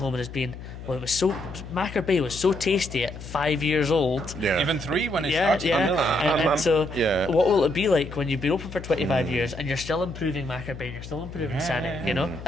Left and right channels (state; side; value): noise; left; hum, 12 dB below the sound